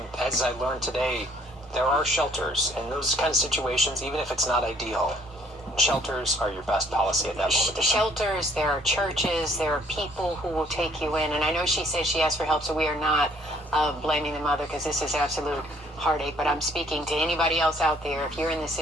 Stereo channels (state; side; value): normal; both; correlation 0.61